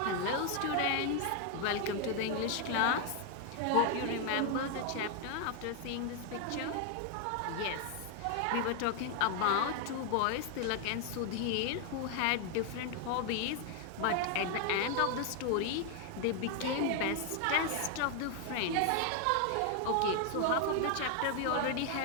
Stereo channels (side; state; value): both; different; correlation 0.00